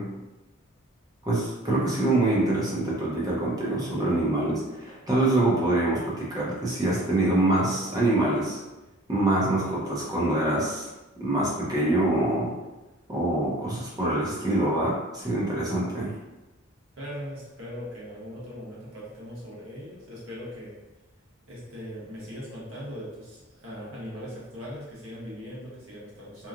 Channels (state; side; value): normal; both; correlation 0.49